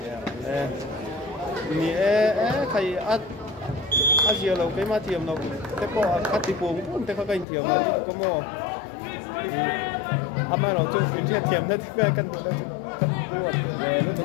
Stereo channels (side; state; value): right; drops out; at 7.5 s